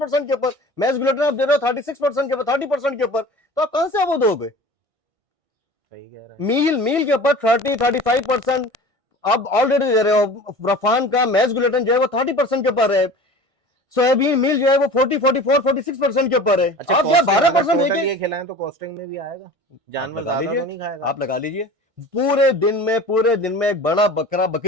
के ऊपर, मैस ग्लूटेन आप दे रहे हो 36% के ऊपर, 30% के ऊपर, तो आप कहां से वो दोगे? सही कह रहे हैं। मील के ऊपर 30-35% आप ऑलरेडी दे रहे हो। रफान का मैस ग्लूटेन जो है वो 30% के ऊपर है। सोयाबीन मील जो है वो 40-44-46% के ऊपर है। अच्छा, आप क्या costing अगर 12% total देंगे? ये खिलाएं तो कॉस्टिंग में भी आएगा? आप जानवर लगा ज्यादा लीजिए, तो नहीं खाएगा? आप लगा लीजिए। पूरे दिन में एक बड़ा बकरा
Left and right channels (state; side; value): late; left; 1.6 ms